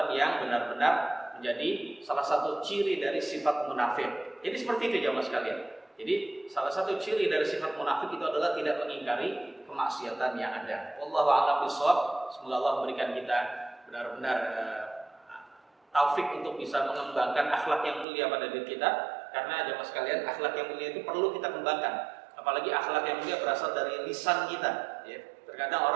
yang benar-benar menjadi salah satu ciri dari sifat munafik. Jadi seperti itu ya mas sekalian. Jadi salah satu ciri dari sifat munafik itu adalah tidak mengingkari kemaksiatan yang ada. Wallahu a'lam bishawab. Semoga Allah memberikan kita benar-benar taufik untuk bisa mengembangkan akhlak yang mulia pada diri kita. Karena jemaah sekalian, akhlak yang mulia itu perlu kita kembangkan. Apalagi akhlak yang mulia berasal dari lisan kita. Ya. Terkadang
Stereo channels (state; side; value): drops out; left; at 18.1 s